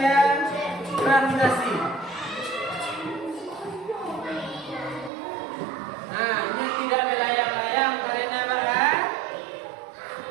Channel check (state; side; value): drops out; left; at 5.1 s